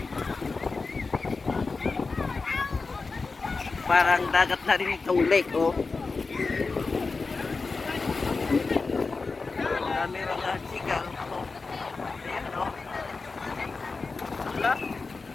Parang dagat na rin itong lake, oh. Dami mga sigaw, oh. Ayan, oh. Wala.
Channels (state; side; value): quieter; right; 4.1 dB